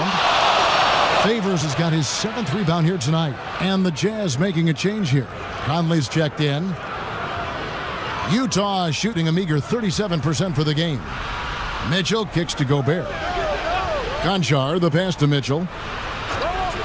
Favors has got his 7th rebound here tonight. And the Jazz making a change here. Conley's checked in. Utah shooting a meager 37% for the game. Mitchell kicks to Gobert. Konchar, the pass to Mitchell.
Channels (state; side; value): identical; both; correlation 1.00